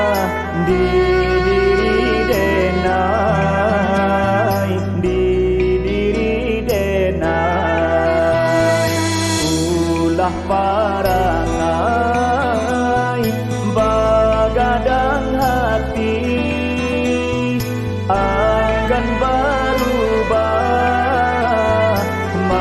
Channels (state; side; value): identical; both; correlation 1.00